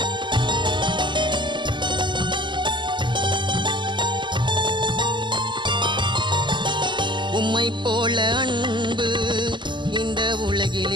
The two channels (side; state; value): left; late; 0.22 ms